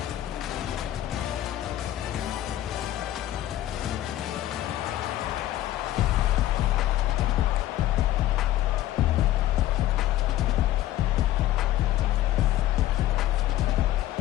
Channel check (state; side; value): quieter; right; 13.7 dB